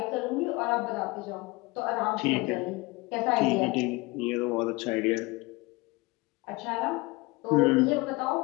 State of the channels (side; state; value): right; quieter; 23.5 dB